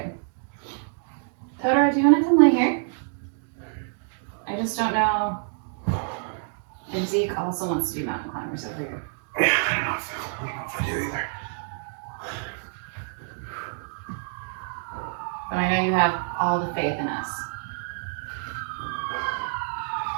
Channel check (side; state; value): left; silent; digital silence